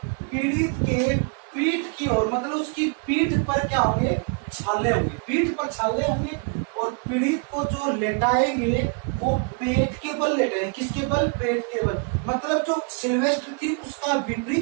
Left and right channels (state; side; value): quieter; left; 37.8 dB